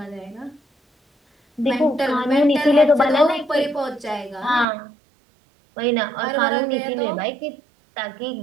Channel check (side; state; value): left; drops out; at 4.7 s